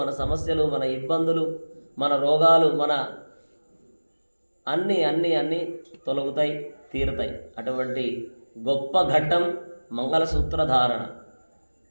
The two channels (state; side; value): inverted; both; correlation -1.00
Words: సమస్యలు, మన ఇబ్బందులు, మన రోగాలు, మన అన్నీ తొలగుతాయి, తీరుతాయి. అటువంటి గొప్ప ఘట్టం మంగళసూత్ర ధారణ.